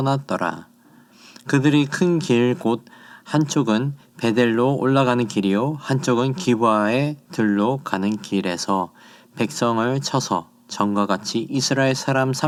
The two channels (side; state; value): both; identical; correlation 1.00